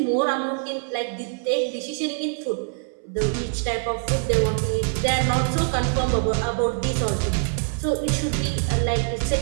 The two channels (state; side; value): silent; left; 61 dB below the other